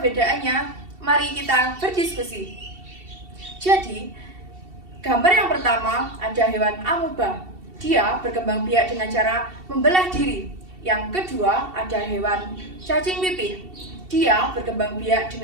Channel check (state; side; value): late; left; 2.7 ms